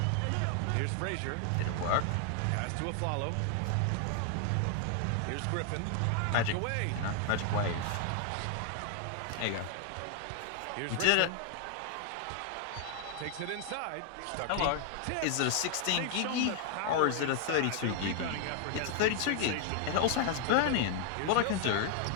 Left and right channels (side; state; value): both; different; correlation 0.00